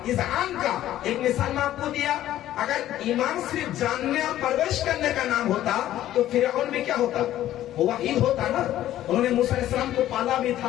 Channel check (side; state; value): right; quieter; 13.1 dB